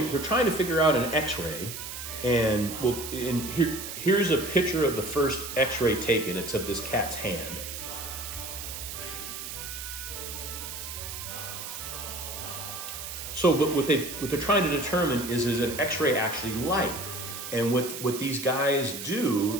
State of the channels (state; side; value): noise; right; hiss, 8 dB below the sound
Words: trying to figure out an X-ray, and here's a picture of the first X-ray taken. It's of this cat's hand. So, but what they're trying to determine is an X-ray actually light? And what these guys